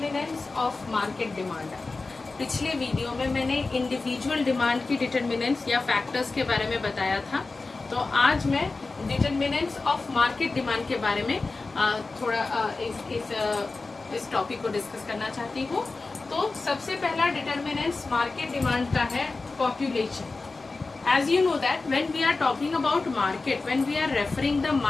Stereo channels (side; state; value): right; quieter; 3.7 dB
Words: of market demand. पिछले video में मैंने individual demand की determinants या factors के बारे में बताया था, तो आज मैं डिटरमिनेंट्स ऑफ मार्केट डिमांड के बारे में थोड़ा इस टॉपिक को डिस्कस करना चाहती हूँ। तो सबसे पहला डिटरमिनेंट्स मार्केट डिमांड का है population. As you know that when we are talking about market, when we are referring the